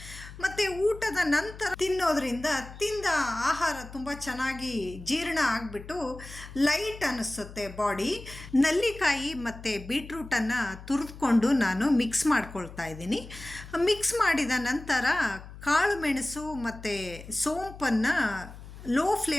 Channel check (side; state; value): left; noise; hum, 15 dB below the sound